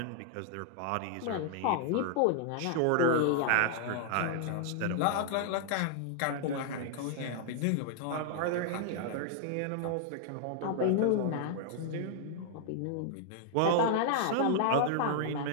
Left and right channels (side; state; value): both; different; correlation -0.01